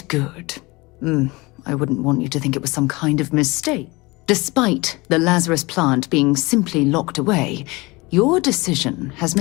I wouldn't want you to think it was some kind of mistake. Despite the Lazarus plant being simply locked away, your decision has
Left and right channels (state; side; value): quieter; right; 23.8 dB